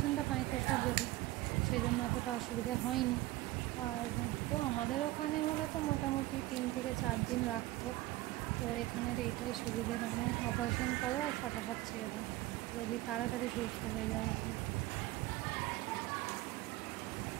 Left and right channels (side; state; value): left; quieter; 17.5 dB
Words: মাইক্রো সার্জারি, সেই জন্য অতটা অসুবিধা হয়নি। আর তো আমাদের ওখানে হলে তো মোটামুটি 3 থেকে 4 দিন রাখতো। তো এখানের এইটাই সুবিধে, মানে অপারেশন করো আর ফটাফট ছেড়ে দাও, রোগী তাড়াতাড়ি সুস্থ হয়ে যায় এতে।